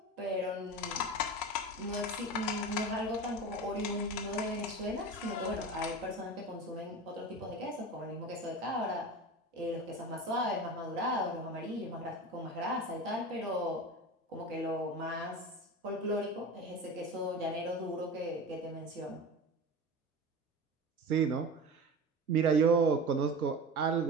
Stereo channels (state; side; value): normal; both; correlation 0.31